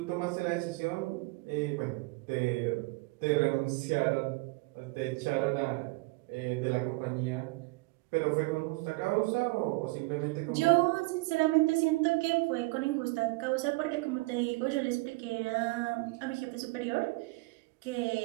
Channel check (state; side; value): quieter; left; 24.7 dB